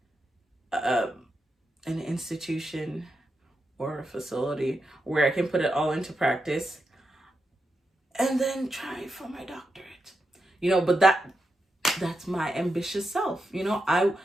an institution or a facility where I can put it all into practice, and then try for my doctorate. But that's my ambitious self. I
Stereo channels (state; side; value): normal; both; correlation 0.87